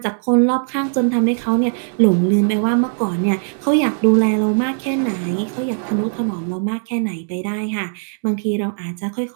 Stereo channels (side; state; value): left; silent; digital silence